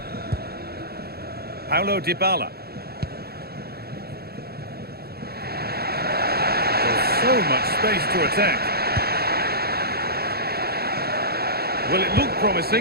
Paulo Dybala. There's so much space to attack. Well, it looked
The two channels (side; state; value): left; late; 0.46 ms